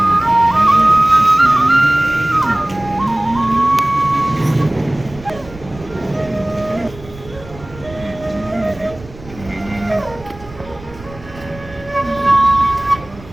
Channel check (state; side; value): noise; right; rumble, 18 dB below the sound